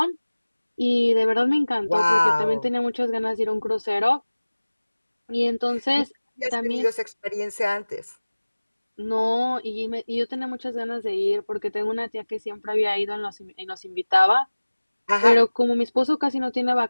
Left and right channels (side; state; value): both; inverted; correlation -1.00